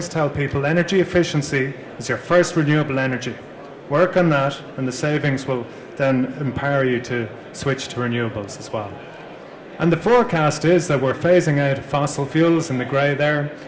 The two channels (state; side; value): identical; both; correlation 1.00